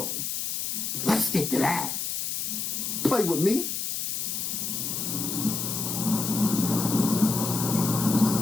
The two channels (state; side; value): noise; left; hiss, 2 dB below the sound